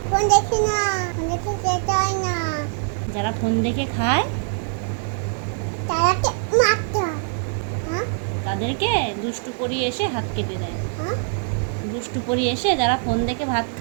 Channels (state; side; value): silent; left; digital silence